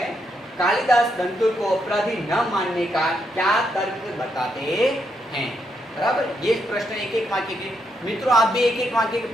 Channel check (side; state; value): both; normal; correlation 0.79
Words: कालिदास दंतुल को अपराधी न मानने का क्या तर्क बताते हैं? बराबर, ये प्रश्न एक एक वाक्य के। मित्रों, आप भी एक एक वाक्य के